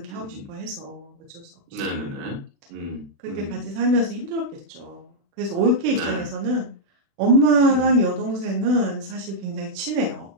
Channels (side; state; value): left; late; 36 ms